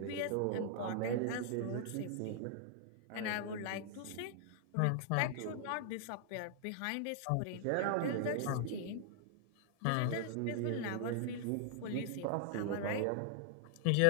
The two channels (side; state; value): both; different; correlation -0.01